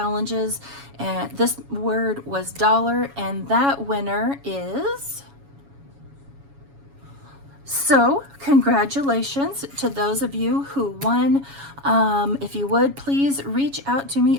And this word was dollar, and that winner is... So congratulations to those of you who won. If you would, please reach out to me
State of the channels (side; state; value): left; late; 7.2 ms